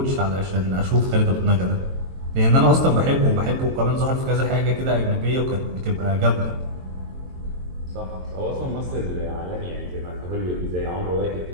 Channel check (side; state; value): left; late; 22 ms